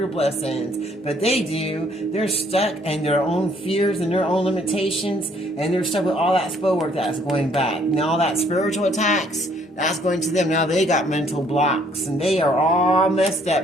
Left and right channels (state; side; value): normal; both; correlation 0.64